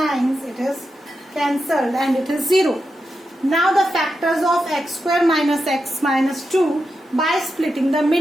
it is cancelled and it is 0. Now the factors of x square minus x minus 2, by splitting the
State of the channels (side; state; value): both; normal; correlation 0.88